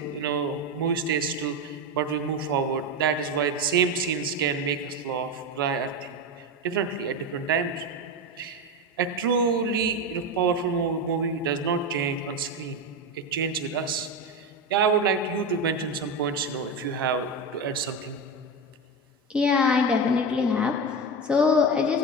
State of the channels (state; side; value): normal; both; correlation 0.18